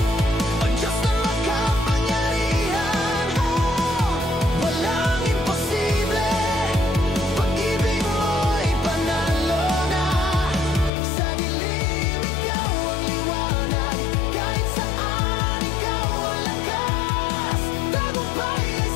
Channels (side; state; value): right; drops out; at 10.9 s